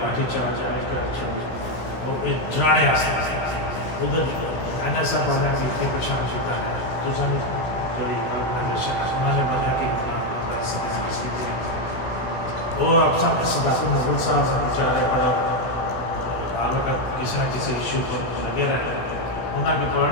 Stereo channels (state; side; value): late; right; 16 ms